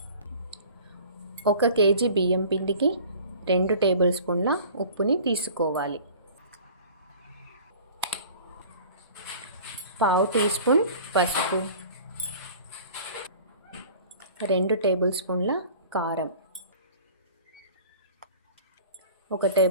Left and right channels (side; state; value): both; inverted; correlation -0.44